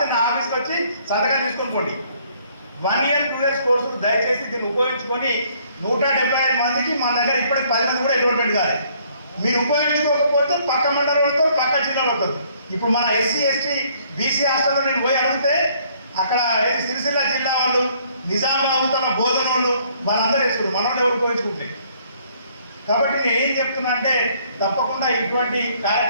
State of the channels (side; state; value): both; inverted; correlation -0.63